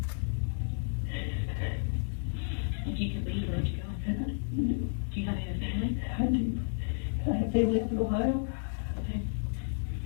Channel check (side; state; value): right; silent; digital silence